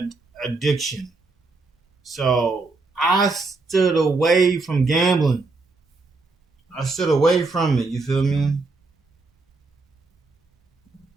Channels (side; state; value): left; quieter; 3.6 dB